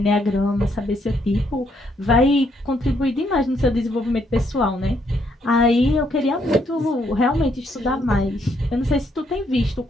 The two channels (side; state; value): both; normal; correlation 0.73